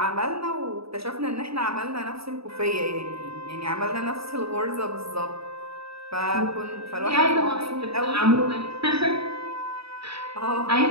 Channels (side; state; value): left; late; 0.77 ms